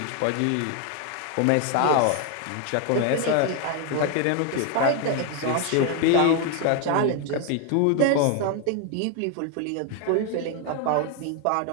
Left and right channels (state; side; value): different; both; correlation 0.01